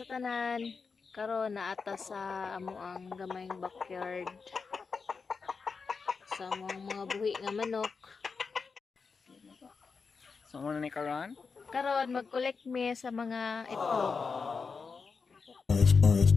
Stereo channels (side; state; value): right; quieter; 5.0 dB